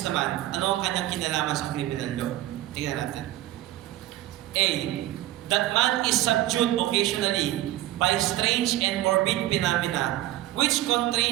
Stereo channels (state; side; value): quieter; left; 15.2 dB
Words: naman, ano ang kanyang kinalaman sa criminal law? Tingnan natin. A, that man is subdued occasionally by strange and morbid phenomena which